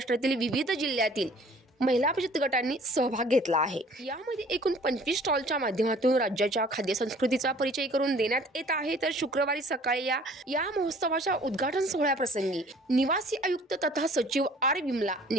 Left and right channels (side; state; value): both; normal; correlation 0.53